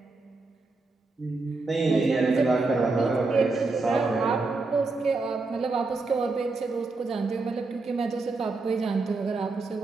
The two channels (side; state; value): left; quieter; 3.6 dB